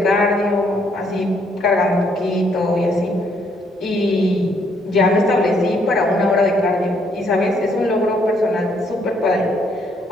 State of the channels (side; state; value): both; normal; correlation 0.69